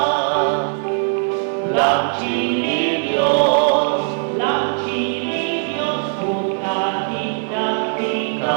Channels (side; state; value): left; silent; digital silence